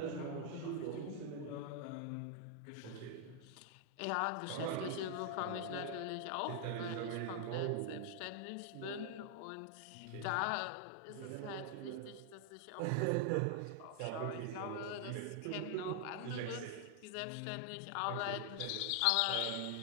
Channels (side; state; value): both; different; correlation 0.00